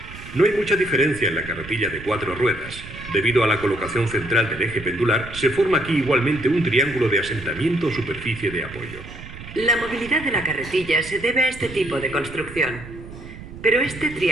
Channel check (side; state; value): right; noise; rumble, 14 dB below the sound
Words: No hay mucha diferencia en la carretilla de 4 ruedas. Debido a la colocación central del eje pendular, se forma aquí igualmente un triángulo de asentamiento o superficie de apoyo. La movilidad de la carretilla se debe a este tipo de construcción. Pero este